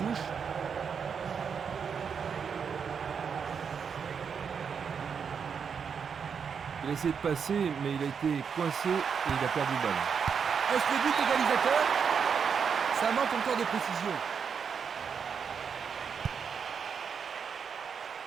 Il a essayé de passer, mais il a été coincé et il a perdu le ballon. Est-ce le but égalisateur? Ça manque encore de précision.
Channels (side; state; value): left; quieter; 6.6 dB